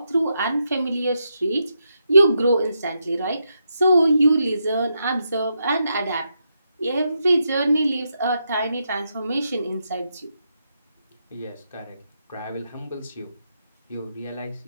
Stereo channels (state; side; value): inverted; both; correlation -0.83